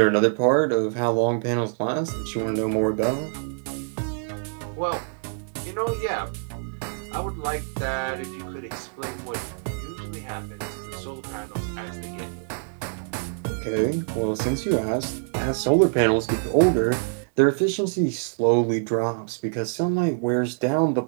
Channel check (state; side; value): silent; left; digital silence